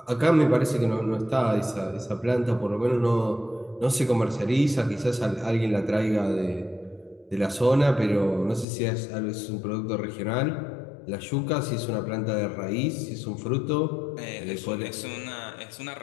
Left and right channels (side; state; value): right; drops out; at 8.7 s